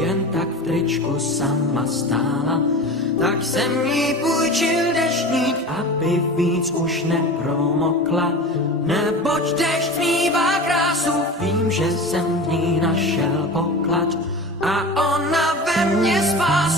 tak v tričku sama stála. Tak jsem jí půjčil deštník, aby víc už nepromokla. Neboť dešť smívá krásu, vím, že jsem v ní našel poklad. A ona ve mně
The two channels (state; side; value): normal; both; correlation 0.32